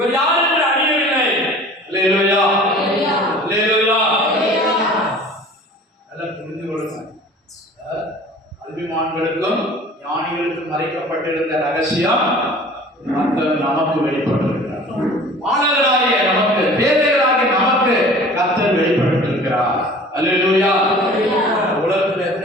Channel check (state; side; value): normal; both; correlation 0.45